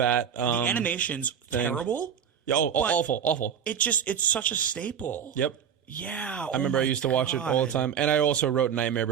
the animation's terrible. Oh, awful. It's such a staple. Yep. Yeah. I remember I used to watch it all the time. And I also wrote Nightmare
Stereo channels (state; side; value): quieter; left; 8.0 dB